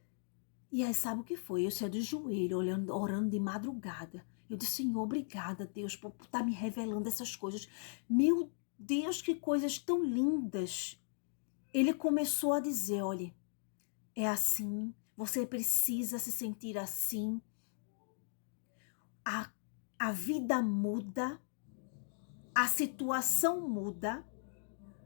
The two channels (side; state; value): right; silent; digital silence